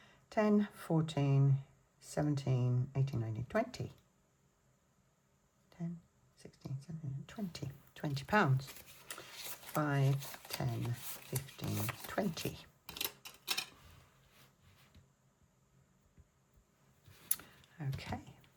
10, 14, 17, 18, 19, 20. 10, 16, 17, 20. 20 pounds. 5, 10, 15, 20. Okay.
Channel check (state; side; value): identical; both; correlation 1.00